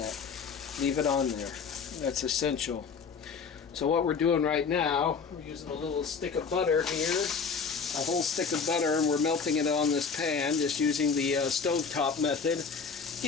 Leave it on there. That's essential. So what we're doing right now, we're using a little stick of butter here, a whole stick of butter, and we're melting it on this pan, just using the stovetop method,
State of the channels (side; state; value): right; quieter; 5.6 dB